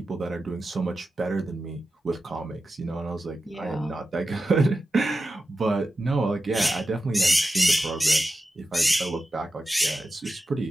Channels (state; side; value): normal; both; correlation 0.92